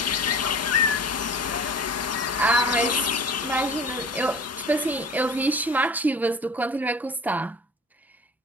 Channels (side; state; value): both; normal; correlation 0.41